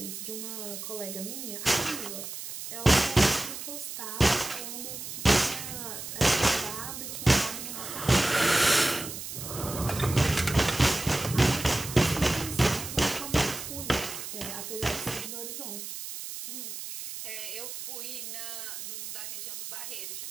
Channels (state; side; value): noise; right; hiss, 8 dB below the sound